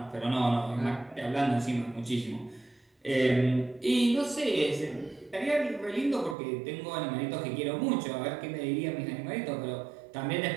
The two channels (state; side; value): drops out; left; at 6.4 s